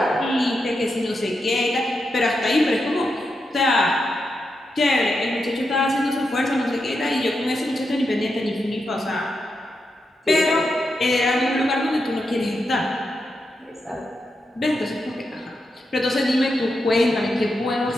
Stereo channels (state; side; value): normal; both; correlation 0.86